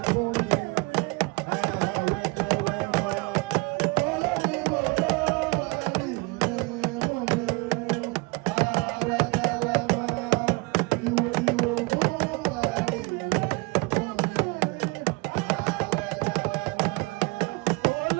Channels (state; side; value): quieter; left; 27.4 dB